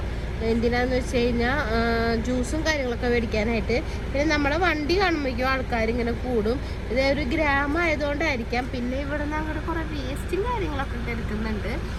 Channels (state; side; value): identical; both; correlation 1.00